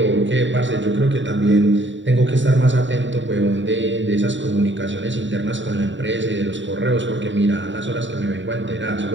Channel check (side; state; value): left; late; 0.54 ms